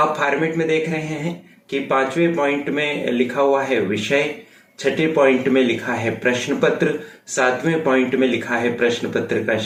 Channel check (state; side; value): identical; both; correlation 1.00